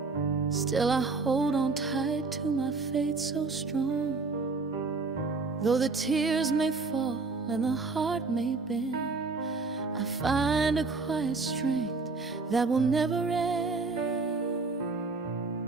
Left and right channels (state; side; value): quieter; left; 4.0 dB